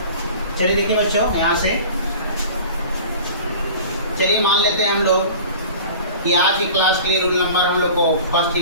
चलिए देखिए बच्चों, यहाँ से चलिए मान लेते हैं हम लोग कि आज की क्लास के लिए रूल नंबर हम लोग को फर्स्ट ही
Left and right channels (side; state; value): both; inverted; correlation -0.41